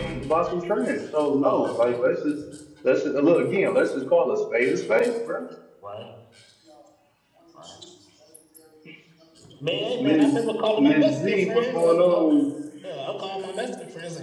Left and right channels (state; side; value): identical; both; correlation 1.00